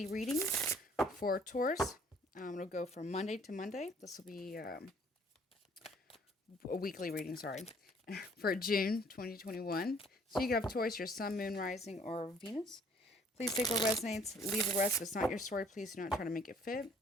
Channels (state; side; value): normal; both; correlation 0.59